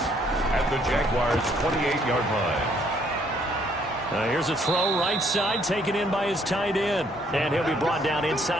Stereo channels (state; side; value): normal; both; correlation 0.66